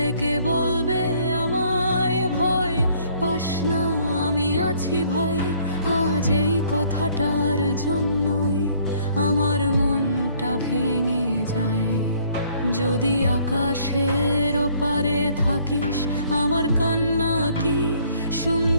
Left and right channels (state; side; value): inverted; both; correlation -0.62